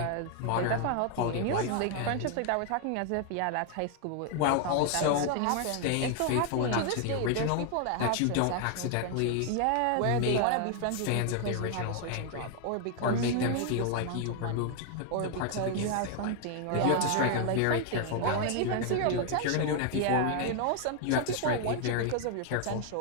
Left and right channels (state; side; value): different; both; correlation 0.00